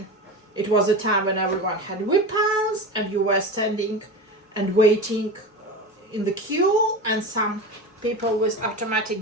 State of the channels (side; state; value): both; normal; correlation 0.27